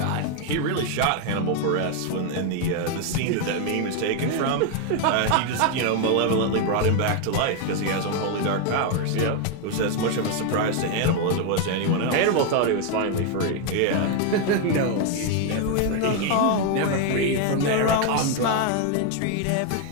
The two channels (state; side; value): different; both; correlation 0.01